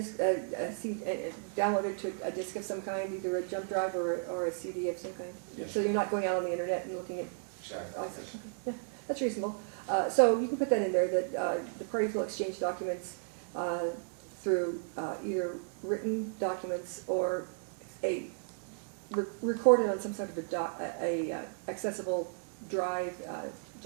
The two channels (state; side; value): silent; left; 55 dB below the other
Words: downloaded to a disk of some kind, either a jump drive or a CD of some kind. Yes. So you're not going out on the internet and looking at. Exactly. Yes. Yeah, that's reasonable. So you can put that in there, that the parties will exchange documents through either written documents or recorded on some sort of a accessible drive,